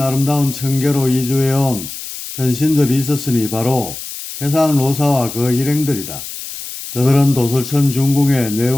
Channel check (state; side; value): noise; left; hiss, 10 dB below the sound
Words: 천계로 이주해온 전신들이 있었으니 바로 태상로사와 그 일행들이다. 그들은 도솔천 중궁에